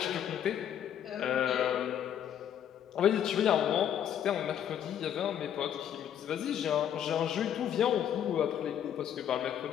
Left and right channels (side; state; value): right; quieter; 9.7 dB